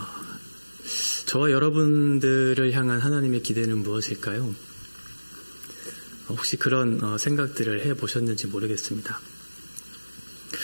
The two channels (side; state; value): both; inverted; correlation -1.00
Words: 저와 여러분들을 향한 하나님의 기대는 무엇일까요? 혹시 그런 생각들을 해보셨는지 모르겠습니다.